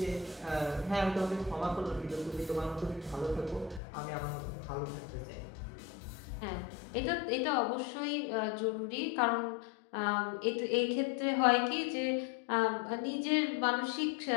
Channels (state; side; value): drops out; right; at 3.8 s